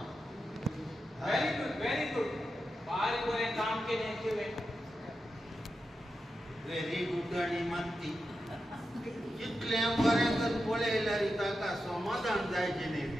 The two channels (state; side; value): normal; both; correlation 0.89